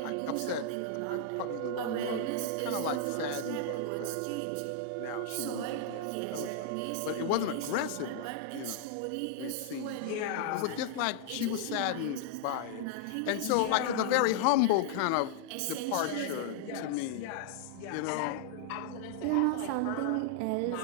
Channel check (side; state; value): both; different; correlation -0.01